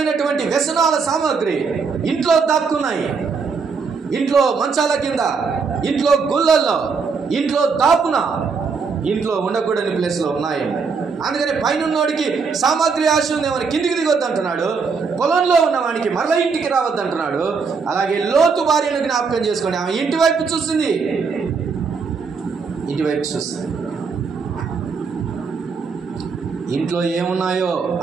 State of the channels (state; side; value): quieter; left; 5.2 dB